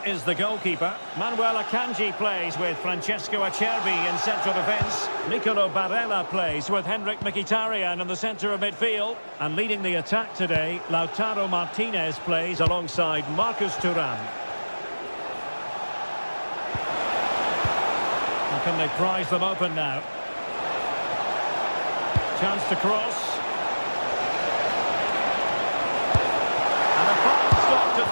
is the goalkeeper. Manuel Akanji plays with Francesco Acerbi in central defence. Nicolo Barella plays with Henrik Mkhitaryan in the centre of midfield. And leading the attack today, Lautaro Martinez plays alongside Marcus Thuram. How can they prize them open now? Chance to cross.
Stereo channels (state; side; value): inverted; both; correlation -1.00